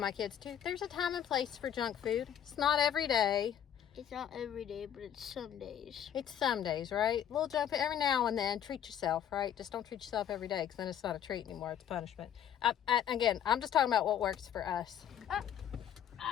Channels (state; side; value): quieter; right; 9.6 dB